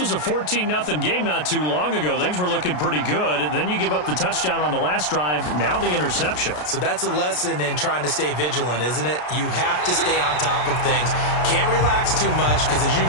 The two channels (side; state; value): right; late; 33 ms